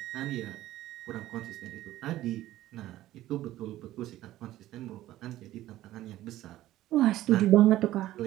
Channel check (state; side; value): quieter; left; 14.8 dB